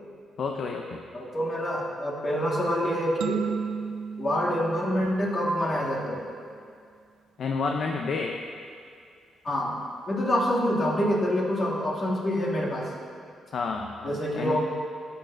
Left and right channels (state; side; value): normal; both; correlation 0.80